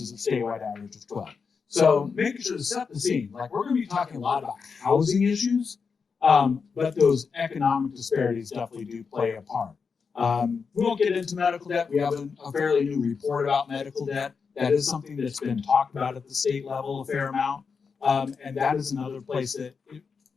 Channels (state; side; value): quieter; right; 5.5 dB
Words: a statewide average of 12%. So making sure to set the scene, like we're going to be talking a lot about housing issues, but those economic disparities definitely do play a part. We won't get into medical debt. We have a fairly new report about medical debt. That is something that's been talked about at the state level a fair amount. And that is another place that